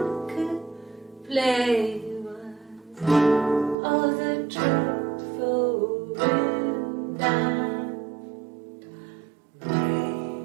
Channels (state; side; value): drops out; left; at 3.8 s